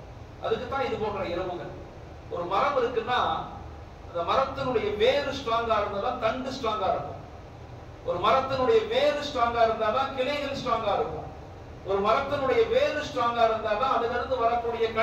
அதுக்கு தான் இது போன்ற இரவுகள். ஒரு மரம் இருக்குன்னா அந்த மரத்தினுடைய வேறு ஸ்ட்ராங்கா இருந்தாதான் தண்டு ஸ்ட்ராங்கா இருக்கும். ஒரு மரத்தினுடைய வேறு ஸ்ட்ராங்கா இருந்தாதான் கிளைகள் ஸ்ட்ராங்கா இருக்கும். ஒரு மரத்தினுடைய வேறு ஸ்ட்ராங்கா இருந்தாதான் அதிலிருந்து வரக்கூடிய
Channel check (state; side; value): identical; both; correlation 1.00